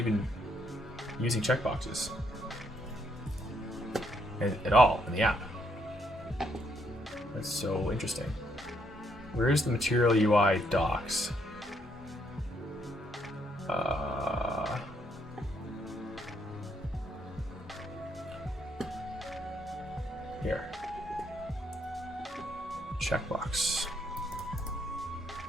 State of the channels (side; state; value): both; normal; correlation 0.74